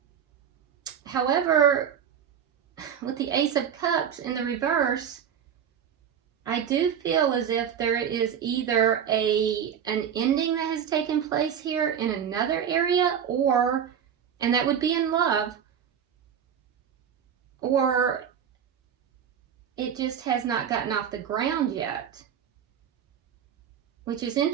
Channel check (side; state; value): left; quieter; 8.4 dB